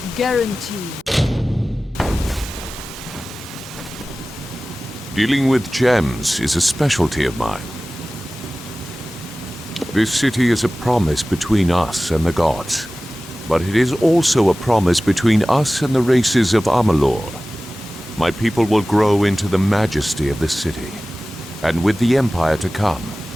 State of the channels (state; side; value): normal; both; correlation 0.97